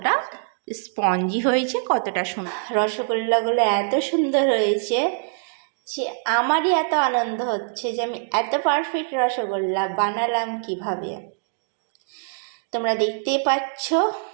স্পঞ্জি হয়েছে, কতটা সুন্দর। রসগোল্লাগুলো এত সুন্দর হয়েছে যে আমারই এত আনন্দ হচ্ছে যে আমি এত পারফেক্ট রসগোল্লা বানালাম কিভাবে। তোমরা দেখতেই পাচ্ছ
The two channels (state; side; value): silent; left; digital silence